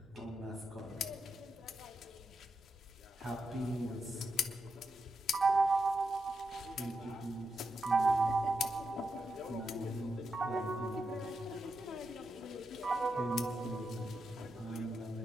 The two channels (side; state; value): left; noise; hum, 27 dB below the sound